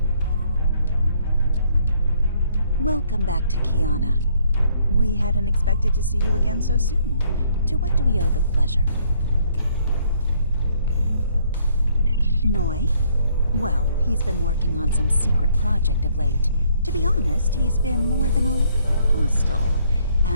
Welcome back to Kiana. We hadn't expected to see you again so soon. To what do we owe the pleasure? Noi? Well, he's been working on some secret project of late. To be honest, he's been more than a little hostile.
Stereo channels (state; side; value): inverted; both; correlation -0.66